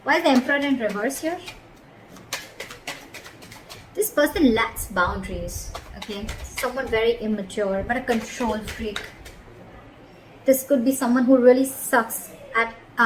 Why is the Emperor in reverse here? This person lacks boundaries, okay? Someone very immature, but a control freak. This could be someone who really sucks at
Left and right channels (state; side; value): identical; both; correlation 1.00